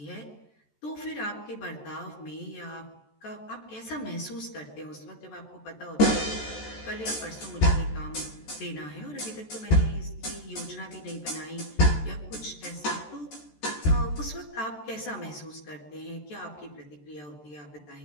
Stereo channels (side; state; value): right; late; 14 ms